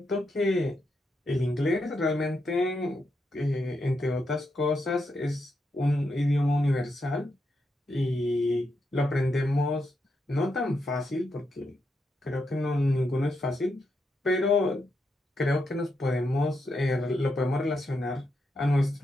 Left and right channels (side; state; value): both; normal; correlation 0.83